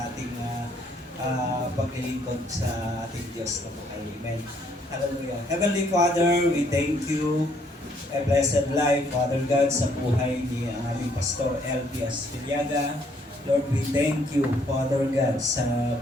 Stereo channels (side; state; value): both; normal; correlation 0.67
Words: ating paglilingkod sa ating Diyos na buhay. Amen. Hallelujah. Heavenly Father, we thank you. A blessed life, Father God, sa buhay ni aming Pastor L.P. Astiliaga. Lord, we thank you, Father God, sa